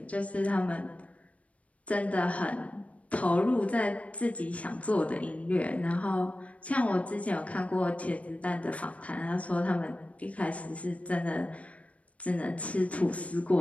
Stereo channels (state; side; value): late; right; 0.065 ms